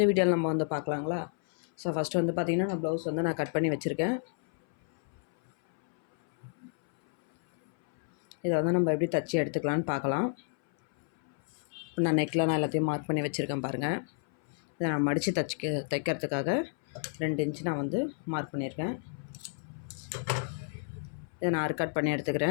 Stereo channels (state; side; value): silent; right; 57 dB below the other